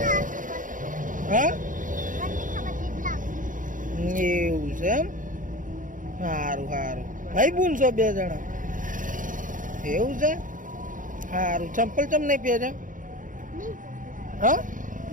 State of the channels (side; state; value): left; late; 0.38 ms